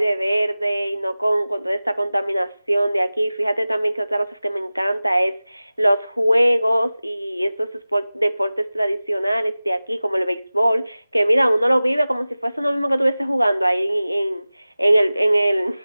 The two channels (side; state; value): both; inverted; correlation -0.97